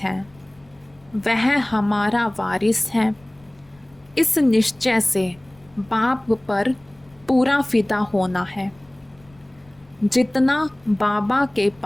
हैं, वह हमारा वारिस है। इस निश्चय से बाप पर पूरा फिदा होना है। जितना बाबा के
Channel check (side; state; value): left; noise; rumble, 29 dB below the sound